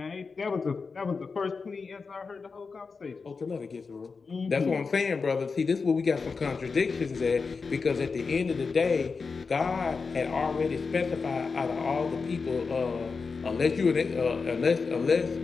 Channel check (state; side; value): quieter; right; 4.8 dB